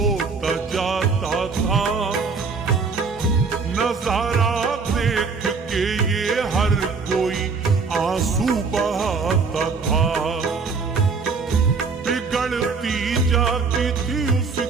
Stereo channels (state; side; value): quieter; left; 4.8 dB